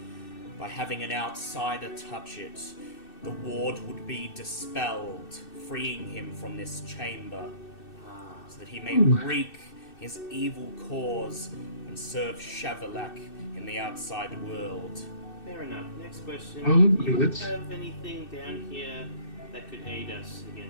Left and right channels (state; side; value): late; right; 2.6 ms